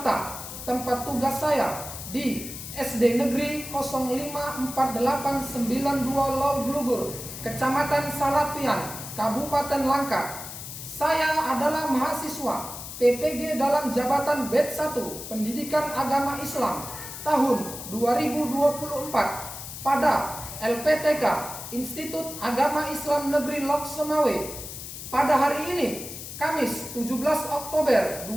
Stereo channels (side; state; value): left; noise; hiss, 10 dB below the sound